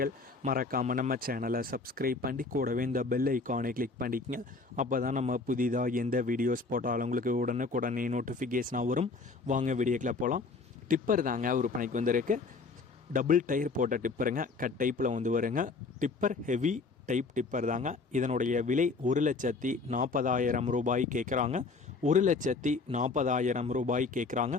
மறக்காமல் நம்ம சேனலை சப்ஸ்கிரைப் பண்ணி கூடவே இந்த பெல் ஐக்கானை கிளிக் பண்ணிக்கங்க. அப்போ தான் நம்ம புதிதாக எந்த வீடியோஸ் போட்டாலும் உங்களுக்கு உடனே நோட்டிஃபிகேஷனாக வரும். வாங்க வீடியோக்கில் போகலாம். டிப்பர் தாங்க விற்பனைக்கு வந்திருக்கு. டபுள் டயர் போட்ட டிப்பருங்க. கட் டைப்பில் வந்து வருங்க. டிப்பர் ஹெவி டைப் டிப்பர் தாங்க. இதனுடைய விலை 1,40,000 ரூபாய் கேட்குறாங்க. 1,40,000 ரூபாய் கேட்குறாங்க.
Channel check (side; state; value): right; quieter; 4.1 dB